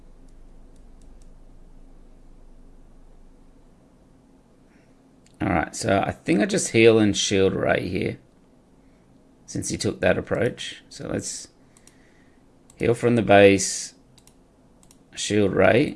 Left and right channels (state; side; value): identical; both; correlation 1.00